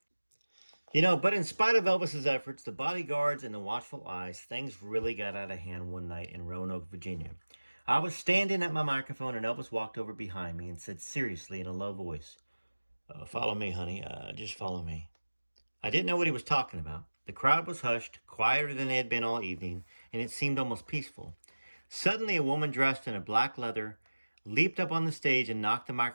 But in spite of Elvis's efforts, the bodyguards and the watchful eyes, things really got out of hand one night in Roanoke, Virginia. I was standing at my microphone and Elvis walked over behind me and said seriously in a low voice, "Follow me, honey. Just follow me." I didn't know what he was talking about. The crowd was hushed, quieter than they had been all evening, and it seemed almost peaceful. Suddenly, a woman dressed in a black leather leaped up on the stage and knocked the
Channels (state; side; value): inverted; both; correlation -1.00